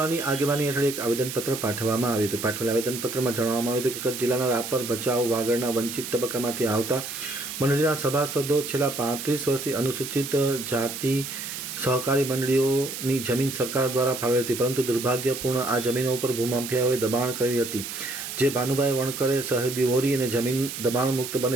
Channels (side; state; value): right; noise; hiss, 7 dB below the sound